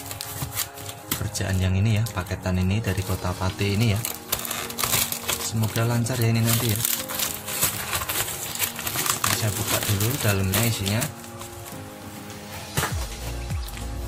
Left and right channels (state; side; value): identical; both; correlation 1.00